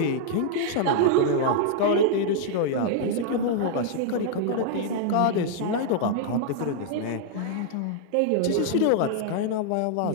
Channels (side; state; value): both; different; correlation -0.01